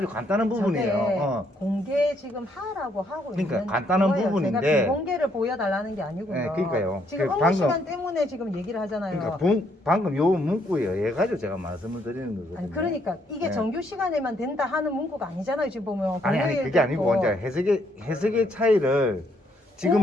간단한 저게 부분이에요. 공개 지금 하라고 하고 그러니까 있는 간단한 거예요. 부분인데. 제가 비공개를 보여달라는 게 아니고요. 네, 그러니까요. 지금 그 업무 방금- 시간 때문에 지금 얘기를 하잖아요. 그러니까 방금 요 문구에 의해 가지고 제가 말씀을 드리는 거거든요. 아니 그러니까 이게 네. 정규 시간에만 된다 하는 문구가 아니잖아요. 지금 보면 아니 공휴일도 그게 아니고 있고. 이제 해석의 차이를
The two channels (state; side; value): normal; both; correlation 0.71